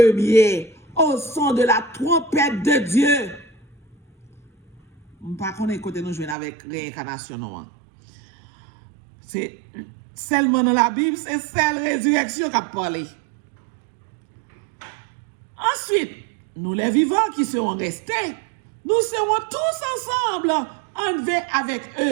au son de la trompette de Dieu. pas connaître côté nous jouer avec réincarnation non. C'est seulement dans la Bible, c'est celle résurrection qui a parlé. Ensuite, nous les vivants qui seront restés, nous serons tous ensemble enlevés avec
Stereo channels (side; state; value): left; drops out; at 6.4 s